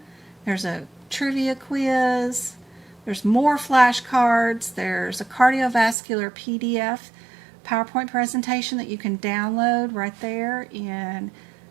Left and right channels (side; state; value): left; drops out; at 6.0 s